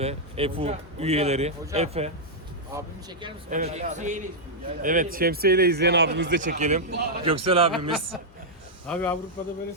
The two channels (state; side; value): normal; both; correlation -0.06